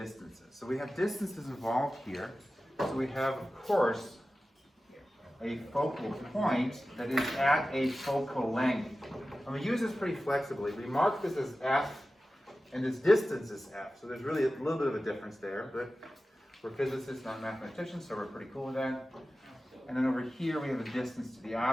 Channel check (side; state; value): both; normal; correlation 0.95